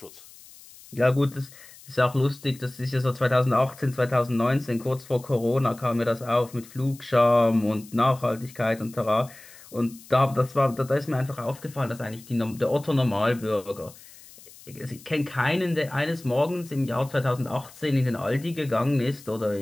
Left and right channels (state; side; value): noise; left; hiss, 21 dB below the sound